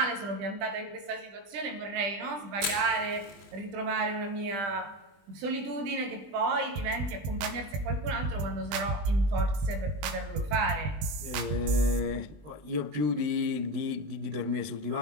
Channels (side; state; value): left; late; 20 ms